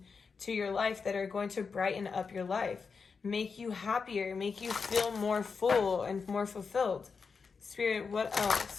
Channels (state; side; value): quieter; right; 5.3 dB